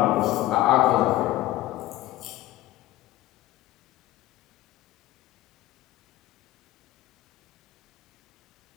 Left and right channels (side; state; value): right; quieter; 16.0 dB